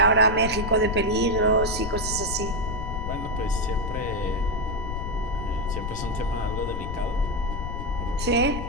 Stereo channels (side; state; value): left; noise; rumble, 4 dB below the sound